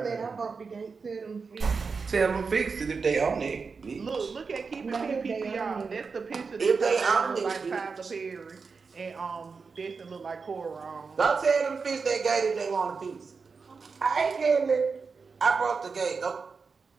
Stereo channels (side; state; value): left; quieter; 4.9 dB